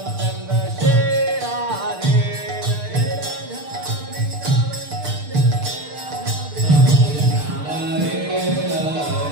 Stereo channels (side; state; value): left; late; 6.7 ms